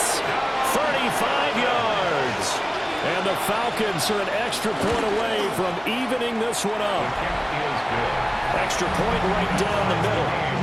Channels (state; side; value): identical; both; correlation 1.00